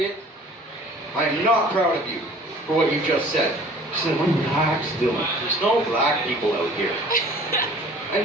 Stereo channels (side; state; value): both; normal; correlation 0.49